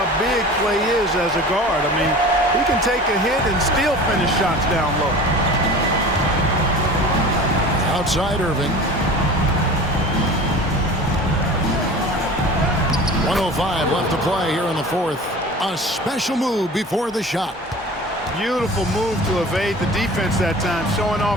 big Clay is as a guard. I mean, he can take a hit and still finish shots down low. Outside Irving. 1:05 left to play here in the fourth. A special move before the shot. Beautiful move to evade the defense that time, showing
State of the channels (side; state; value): both; normal; correlation 0.39